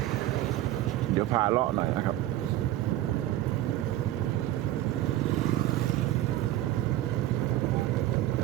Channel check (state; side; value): quieter; left; 14.3 dB